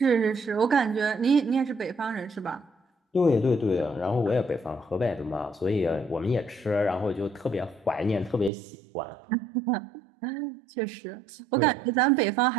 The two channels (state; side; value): drops out; left; at 8.5 s